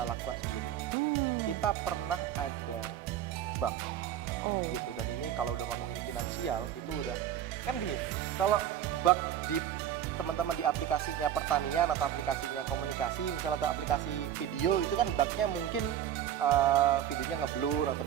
lakukan sebelumnya. Kita pernah ada bug gitu, dan ini kalau udah ngomongin finansial itu udah kan gini, kalau bug di teman-teman di aplikasinya pertanian atau aplikasinya komunikasi misalnya atau aplikasi video, itu kan bugnya mungkin videonya ngeblur atau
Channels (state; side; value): quieter; left; 10.7 dB